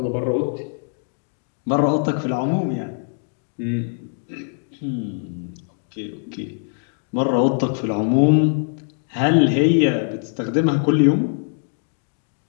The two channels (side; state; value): right; silent; 64 dB below the other